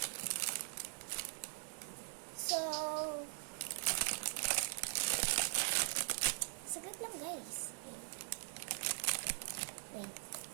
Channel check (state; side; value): silent; left; digital silence